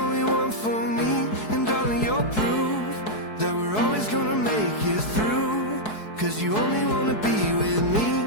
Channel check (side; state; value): right; late; 4.7 ms